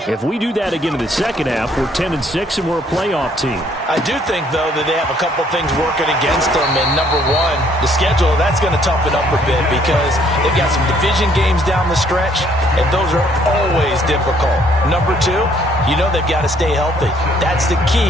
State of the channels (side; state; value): both; normal; correlation 0.64